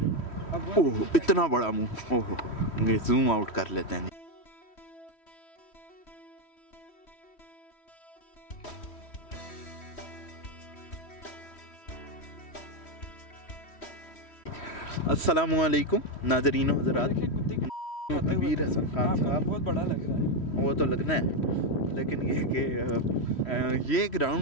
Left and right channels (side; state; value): right; late; 3.1 ms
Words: अब ओह इतना बड़ा मुंह, ओह ये जूम आउट कर लेते हैं। अस्सलामुअलैकुम नाज़रीन हज़रात। अमीर हसन खान साहब बहुत बड़ा लग रहा है। वो तो लगना है, लेकिन ये कि ये